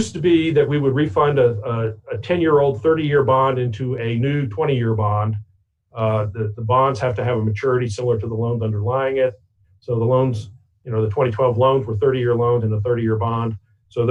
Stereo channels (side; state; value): both; identical; correlation 1.00